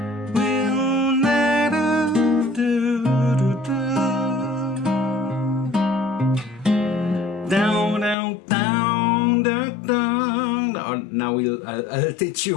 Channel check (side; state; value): right; drops out; at 8.2 s